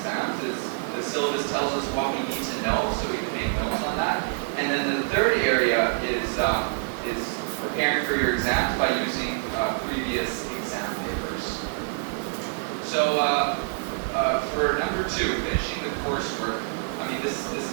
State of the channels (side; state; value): left; silent; 61 dB below the other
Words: Is the syllabus tells us what we need to know, so we can make notes on that. And then the third area is preparing for your exams by using previous exam papers. So for number 2, finishing the coursework, I mean, this